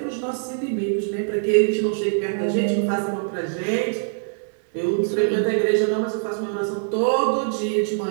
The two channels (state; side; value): silent; left; digital silence